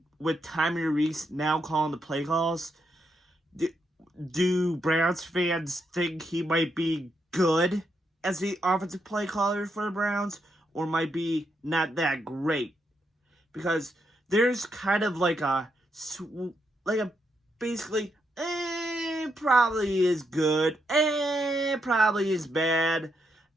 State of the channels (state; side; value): normal; both; correlation 0.80